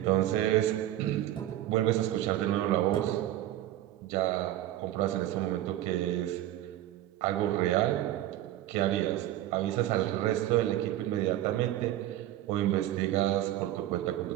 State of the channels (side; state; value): left; quieter; 13.7 dB